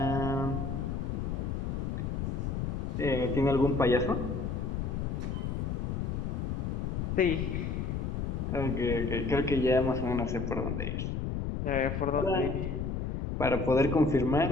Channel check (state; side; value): noise; left; rumble, 2 dB below the sound